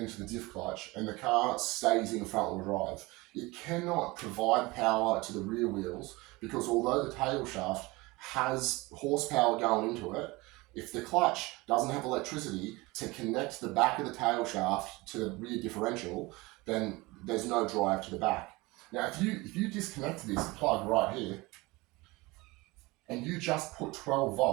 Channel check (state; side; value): quieter; left; 22.7 dB